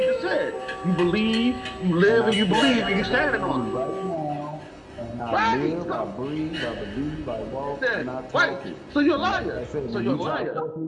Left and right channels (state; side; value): identical; both; correlation 1.00